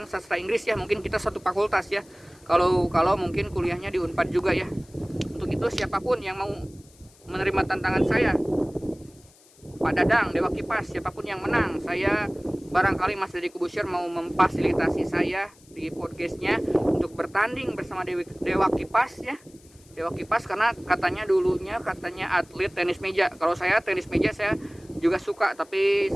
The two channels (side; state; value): left; noise; hiss, 27 dB below the sound